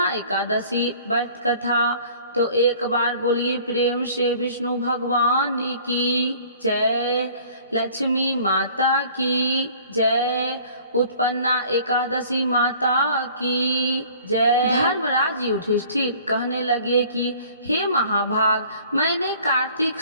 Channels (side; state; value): both; inverted; correlation -0.51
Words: एकादशी व्रत कथा। तो एक बार बोलिए प्रेम से विष्णु भगवान की जय, लक्ष्मी माता की जय, उत्पन्ना एकादशी माता की जय। धर्मराज युधिष्ठिर कहने लगे कि हे महाभाग, मैंने कार्तिक